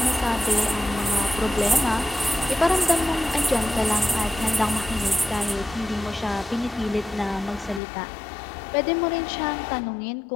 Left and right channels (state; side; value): drops out; right; at 7.8 s